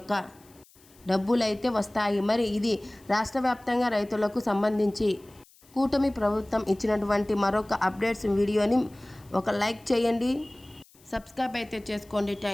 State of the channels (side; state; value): left; noise; hiss, 28 dB below the sound